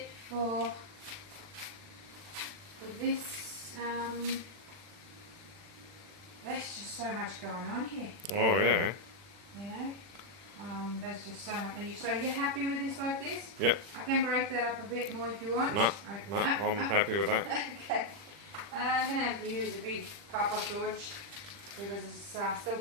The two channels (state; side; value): late; left; 40 ms